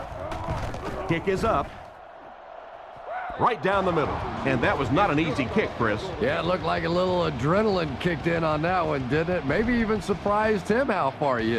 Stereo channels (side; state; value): both; identical; correlation 1.00